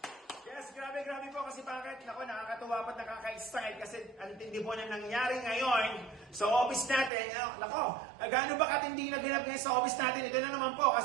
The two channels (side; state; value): left; drops out; at 7.1 s